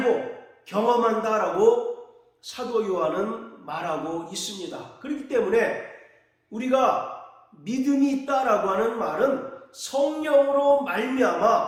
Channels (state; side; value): identical; both; correlation 1.00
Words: 경험한다라고 사도 요한은 말하고 있습니다. 그렇기 때문에 우리가 믿음이 있다라고 하는 말은 성령으로